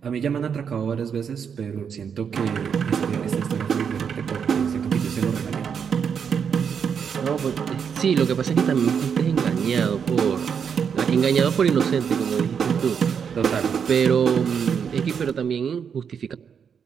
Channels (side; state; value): left; quieter; 7.1 dB